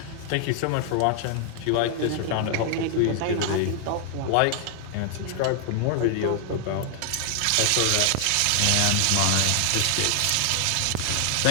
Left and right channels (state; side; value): different; both; correlation 0.00